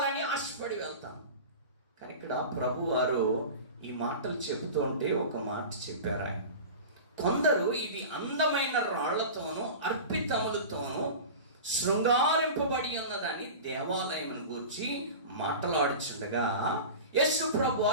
ఆశపడి వెళ్తాం. కానీ ఇక్కడ ప్రభు వారు ఈ మాటలు చెబుతూ ఉంటే ఒక మాట చెప్పారు ఆయన. కొందరు ఇది అందమైన రాళ్లతోనూ అర్పితములతోనూ శృంగారింపబడి ఉన్నదని దేవాలయం గురించి మాట్లాడుచుండగా యేసు ప్రభు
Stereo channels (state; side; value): inverted; both; correlation -0.32